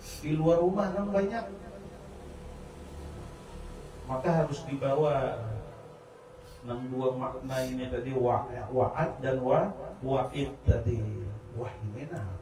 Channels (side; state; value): both; identical; correlation 1.00